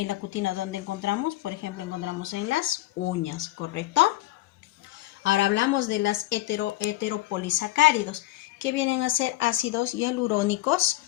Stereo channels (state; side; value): quieter; right; 17.1 dB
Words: la cutina, ¿dónde encontramos? Por ejemplo, encontramos en las uñas, ¿correcto? Ahora hablamos de las heteropolisacáridos, que vienen a ser ácidos hialurónicos,